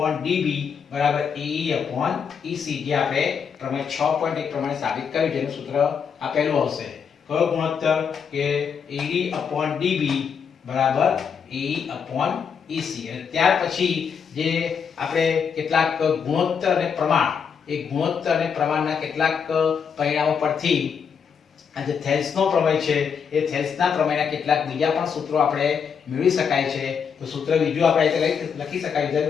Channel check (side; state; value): right; quieter; 6.7 dB